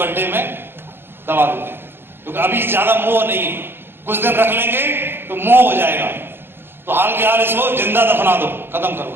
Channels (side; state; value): left; late; 0.11 ms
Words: में दबा देंगे, क्योंकि अभी ज्यादा मोह नहीं है, कुछ दिन रख लेंगे तो मोह हो जाएगा। तो हाल के हाल इसको जिंदा दफना दो, खत्म करो